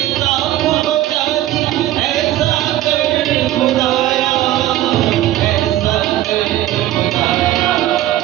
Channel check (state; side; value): quieter; left; 14.1 dB